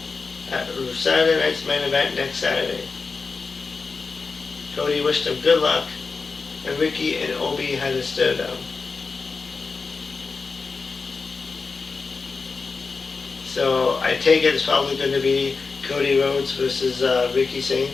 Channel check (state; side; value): quieter; right; 4.5 dB